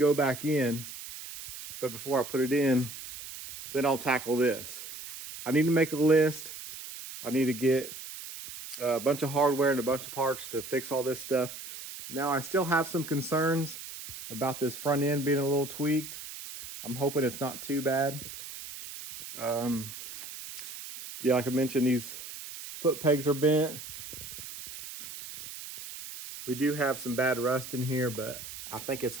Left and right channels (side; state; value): right; noise; hiss, 11 dB below the sound